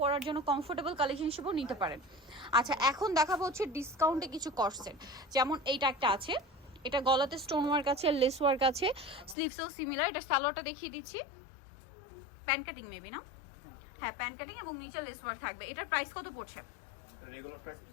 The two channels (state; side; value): drops out; right; at 9.3 s